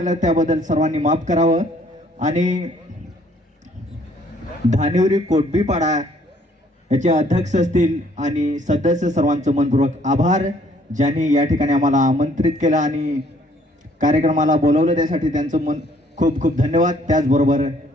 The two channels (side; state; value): both; normal; correlation 0.63